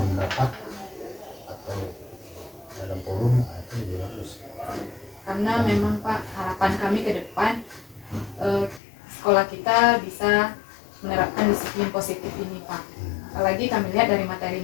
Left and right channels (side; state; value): right; drops out; at 8.8 s